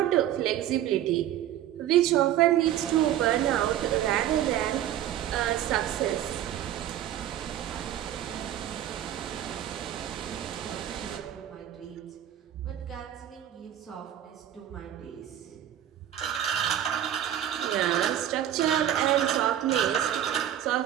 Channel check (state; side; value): quieter; left; 11.5 dB